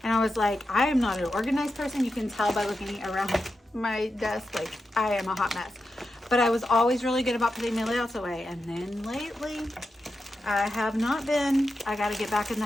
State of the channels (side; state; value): both; normal; correlation 0.89